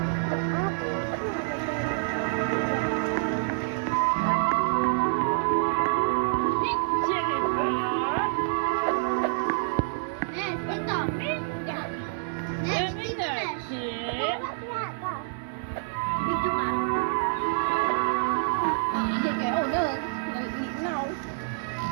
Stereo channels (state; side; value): silent; left; digital silence